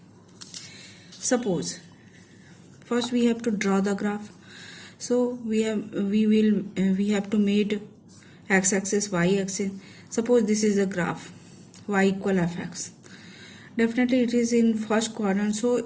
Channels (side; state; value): both; identical; correlation 1.00